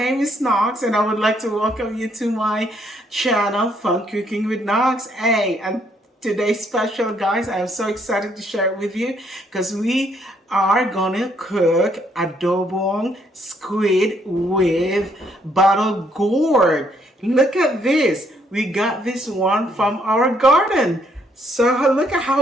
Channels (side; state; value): both; normal; correlation 0.70